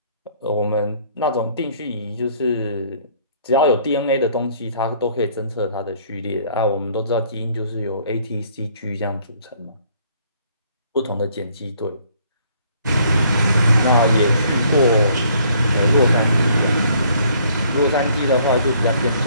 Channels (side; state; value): both; inverted; correlation -0.62